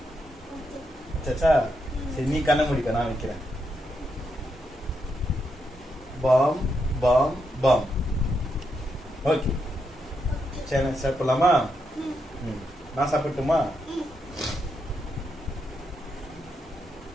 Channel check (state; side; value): normal; both; correlation 0.82